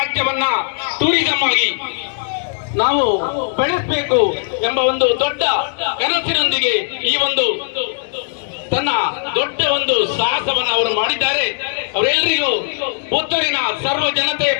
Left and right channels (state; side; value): silent; right; 67 dB below the other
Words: ಟೂರಿಸಂ ಆಗಿ ನಾವು ಬೆಳೆಸಬೇಕು ಎಂಬ ಒಂದು ದೊಡ್ಡ ಕನಸಿನೊಂದಿಗೆ ಈ ಒಂದು ತನ್ನ ದೊಡ್ಡ ಒಂದು ಸಾಹಸವನ್ನು ಅವರು ಮಾಡಿದ್ದಾರೆ. ಅವರೆಲ್ಲರಿಗೂ ಪುತ್ತೂರಿನ ಸರ್ವ ಜನತೆಯ